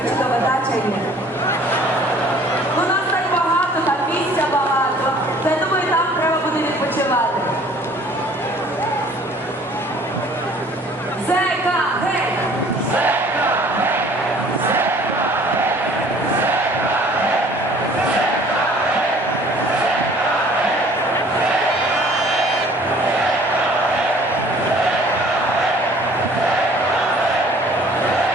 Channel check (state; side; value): normal; both; correlation 0.53